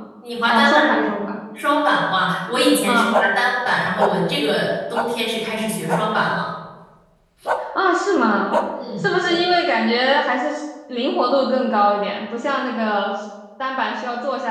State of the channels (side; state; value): both; identical; correlation 1.00